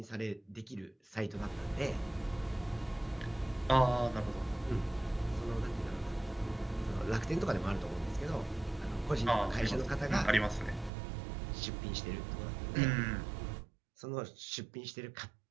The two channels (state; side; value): drops out; left; at 10.9 s